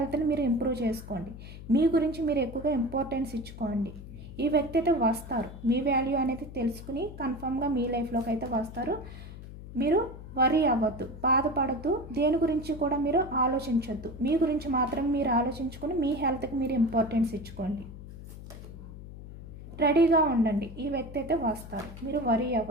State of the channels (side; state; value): left; noise; hum, 13 dB below the sound